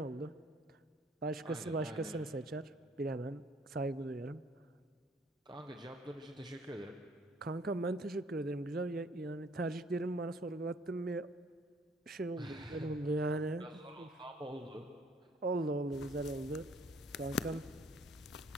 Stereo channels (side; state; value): both; normal; correlation 0.60